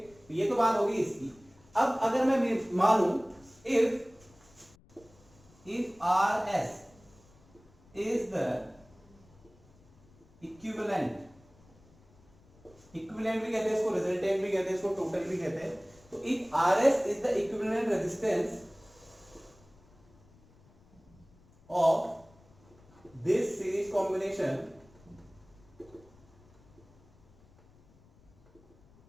ये तो बात होगी इसकी। अब अगर मैं मानूं if RS is the equivalent equivalent भी कहते हैं इसको, रिजल्टेंट भी कहते हैं इसको, टोटल भी कहते हैं। तो if RS is the equivalent resistance of this series combination,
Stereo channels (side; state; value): left; noise; rumble, 28 dB below the sound